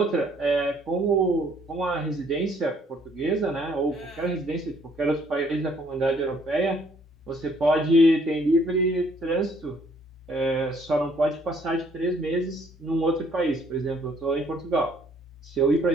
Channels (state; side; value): normal; both; correlation 0.64